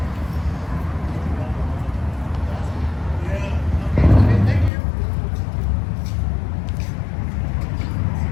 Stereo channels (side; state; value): right; drops out; at 4.7 s